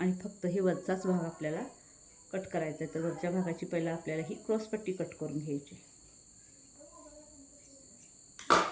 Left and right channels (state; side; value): identical; both; correlation 1.00